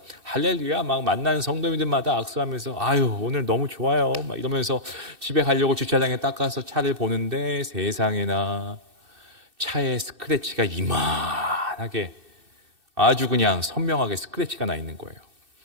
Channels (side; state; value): left; late; 2.6 ms